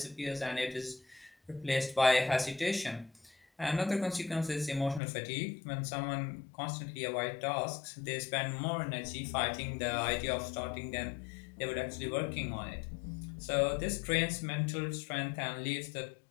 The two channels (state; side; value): drops out; right; at 5.0 s